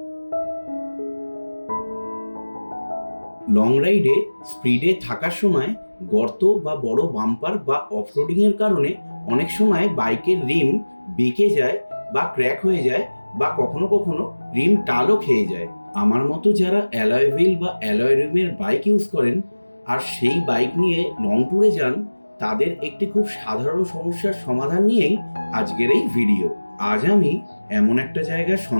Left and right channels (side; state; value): both; inverted; correlation -1.00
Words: লং রাইডে স্পিডে থাকার সময় গর্ত বা বড় বাম্পার বা অফরোডিংয়ের কারণে অনেক সময় বাইকের রিম বেঁকে যায় বা ক্র্যাক হয়ে যায়, বা কখনো কখনো রিম টালও খেয়ে যায়। আমার মতো যারা অ্যালয় হুইল বা অ্যালয় রিমের বাইক ইউজ করেন আর সেই বাইক নিয়ে লং ট্যুরে যান, তাদের একটি খুব সাধারণ সমস্যার সমাধান নিয়েই আজকের এই ভিডিও। আজ আমি এমন একটা জায়গার